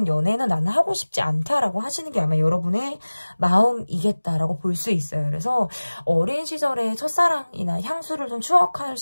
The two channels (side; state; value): both; inverted; correlation -1.00